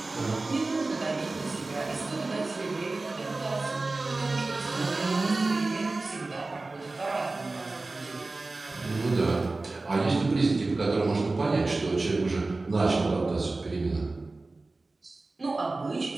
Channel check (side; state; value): left; quieter; 3.3 dB